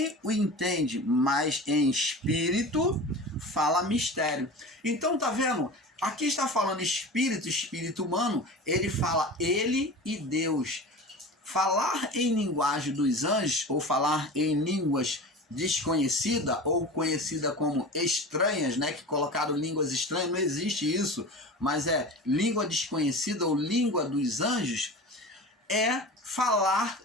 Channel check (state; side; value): normal; both; correlation 0.34